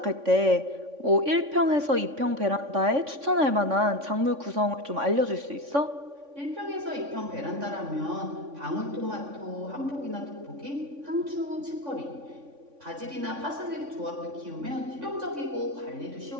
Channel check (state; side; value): late; left; 3.5 ms